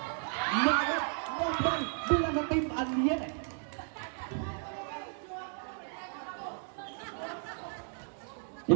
Nogat ball bilang sa Team Aliere.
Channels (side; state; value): left; silent; 55 dB below the other